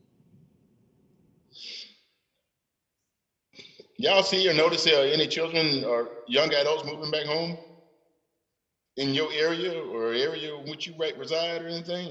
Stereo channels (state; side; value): identical; both; correlation 1.00